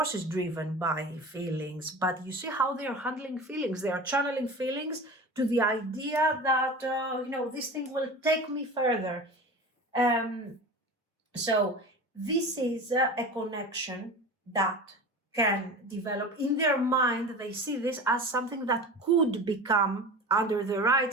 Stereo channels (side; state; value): both; normal; correlation 0.33